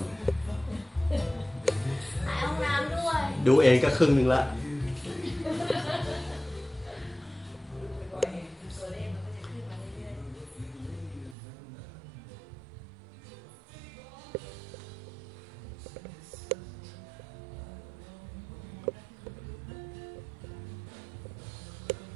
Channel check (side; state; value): left; drops out; at 11.4 s